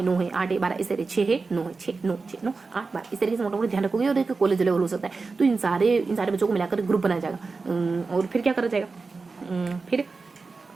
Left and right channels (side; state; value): left; quieter; 4.2 dB